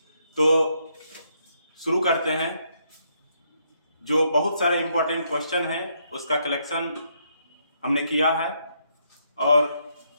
तो शुरू करते हैं। जो बहुत सारे इंपॉर्टेंट क्वेश्चन हैं उसका कलेक्शन हमने किया है और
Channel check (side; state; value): both; inverted; correlation -0.75